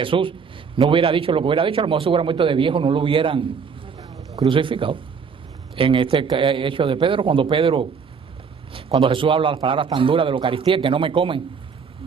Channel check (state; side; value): quieter; left; 6.0 dB